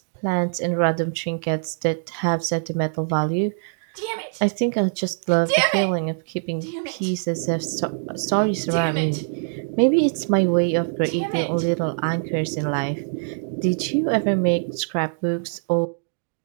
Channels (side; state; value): left; silent; digital silence